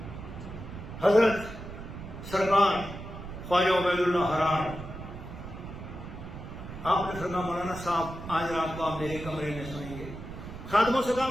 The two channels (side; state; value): right; noise; rumble, 11 dB below the sound